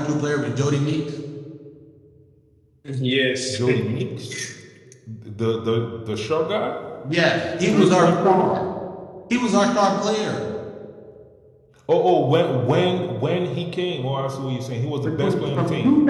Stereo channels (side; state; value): both; identical; correlation 1.00